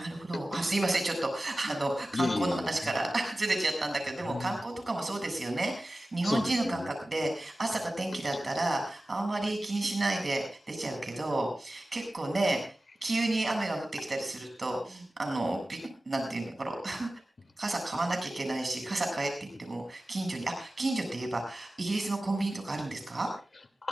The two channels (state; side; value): normal; both; correlation 0.96